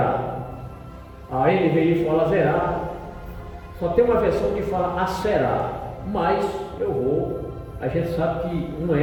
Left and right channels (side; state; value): both; identical; correlation 1.00